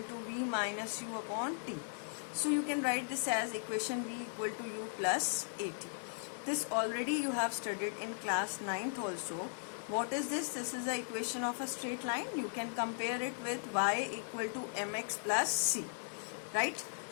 to V minus U upon T. So you can write this as equation V equal to U plus AT. This already you have studied in class 9th also. What is this? This is the equation of a straight line. You can compare it with y equal to mx plus c, right?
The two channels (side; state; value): right; silent; digital silence